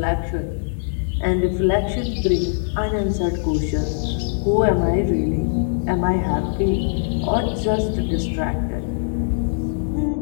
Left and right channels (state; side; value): silent; right; digital silence